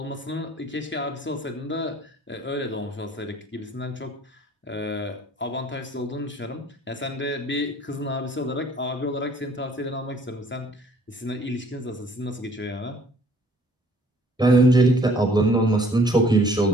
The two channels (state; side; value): normal; both; correlation 0.57